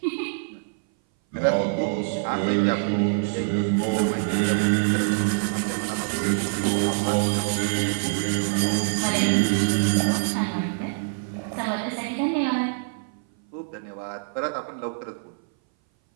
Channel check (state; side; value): silent; left; 59 dB below the other